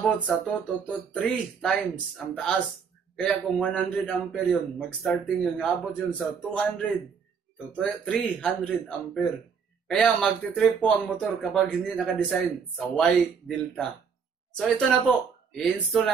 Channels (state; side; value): quieter; left; 6.3 dB